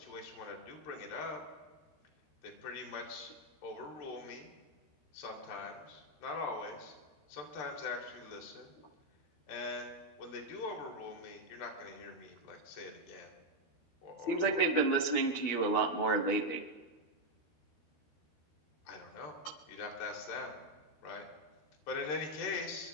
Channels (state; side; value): late; right; 12 ms